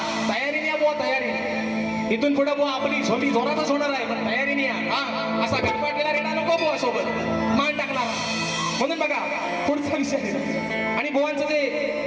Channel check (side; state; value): both; identical; correlation 1.00